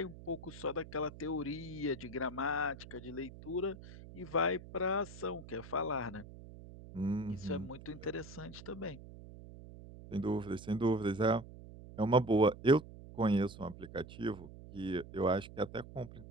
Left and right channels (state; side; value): noise; right; hum, 15 dB below the sound